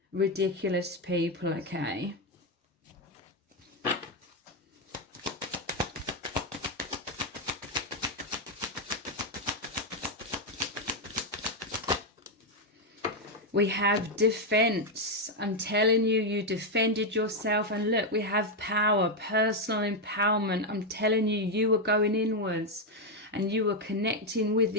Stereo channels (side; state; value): both; normal; correlation 0.04